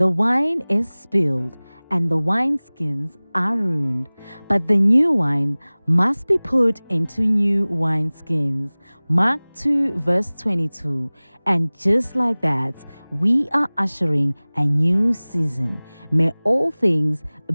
wine is spilled and the wineskins are ruined, but the new wine must be put into new wineskins. Mark 2, verse 22. And just like that, we are ushering a new season. May all things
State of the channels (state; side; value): inverted; both; correlation -1.00